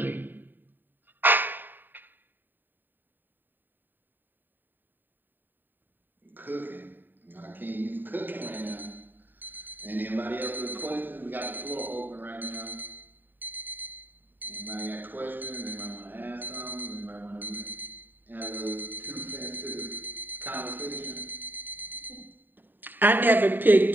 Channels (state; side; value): late; left; 0.092 ms